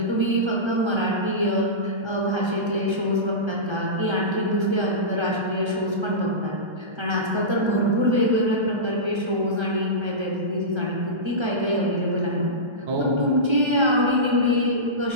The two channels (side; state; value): left; late; 1.3 ms